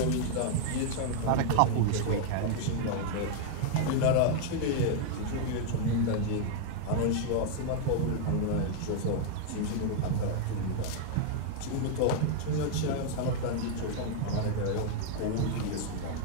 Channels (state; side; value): different; both; correlation 0.00